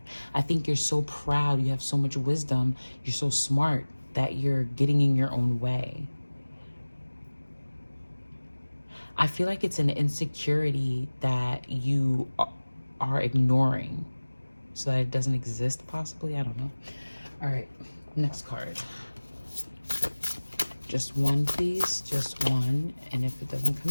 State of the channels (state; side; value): inverted; both; correlation -1.00